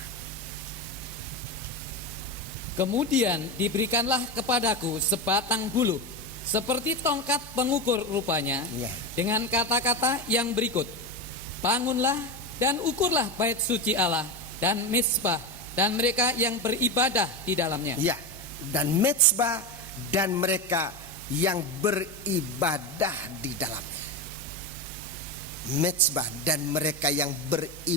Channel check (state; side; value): normal; both; correlation 0.16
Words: Kemudian diberikanlah kepadaku sebatang buluh, seperti tongkat pengukur rupanya, dengan kata-kata yang berikut: bangunlah dan ukurlah bait suci Allah dan mezbah dan mereka yang beribadah di dalamnya. Ya, dan mezbah dan mereka yang beribadah di dalamnya. Mezbah dan mereka yang